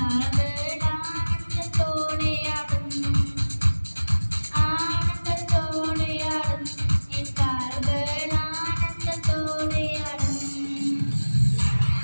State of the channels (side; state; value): both; inverted; correlation -1.00